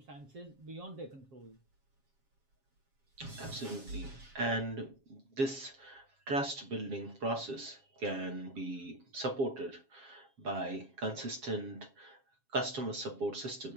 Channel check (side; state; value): left; late; 7.4 ms